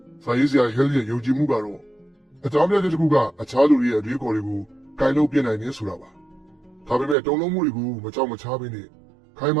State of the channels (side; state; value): left; drops out; at 7.2 s